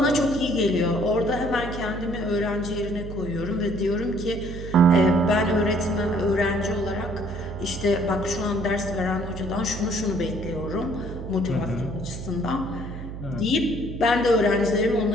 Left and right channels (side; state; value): right; noise; hum, 9 dB below the sound